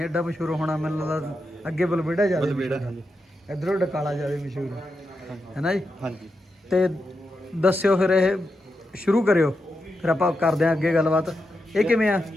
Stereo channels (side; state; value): both; normal; correlation 0.87